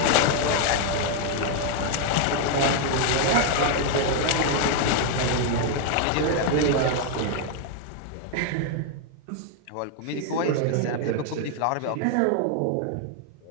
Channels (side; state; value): both; different; correlation 0.00